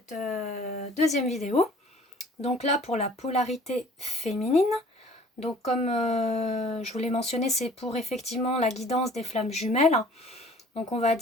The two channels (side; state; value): both; normal; correlation 0.51